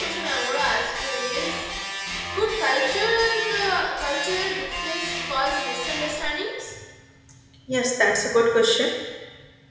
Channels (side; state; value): both; identical; correlation 1.00